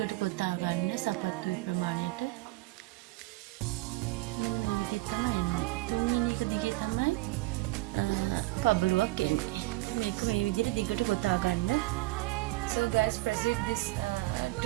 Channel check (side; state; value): left; quieter; 20.4 dB